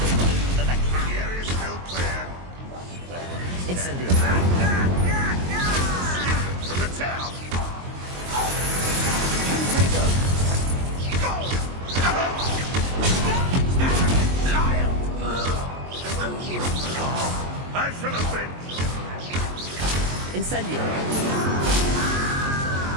For the cat. The area's still clear. Incendio. From the town. I shall have been. Incendio.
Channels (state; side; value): late; left; 22 ms